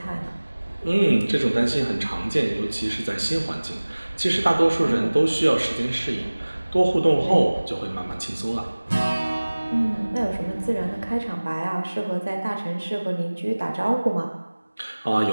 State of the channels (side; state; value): both; inverted; correlation -1.00